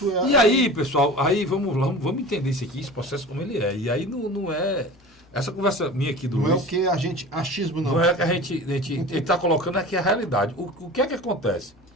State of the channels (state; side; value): normal; both; correlation 0.36